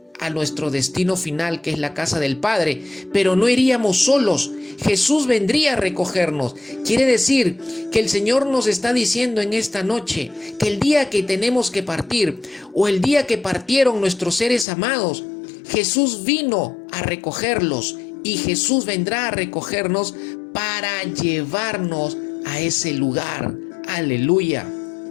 a nuestro destino final, que es la casa del Padre. Pero no iríamos solos. Jesús vendría a recogernos. Quiere decir que el Señor nos está diciendo en esta noche que el día que tenemos que partir, o el día que partieron nuestros seres amados, Jesús vino a recogerlos, y Jesús vendrá a recogernos para llevarnos a ese lugar. Aleluya.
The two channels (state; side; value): drops out; right; at 14.7 s